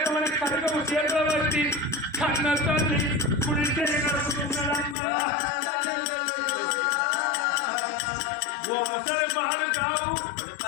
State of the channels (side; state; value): right; drops out; at 5.0 s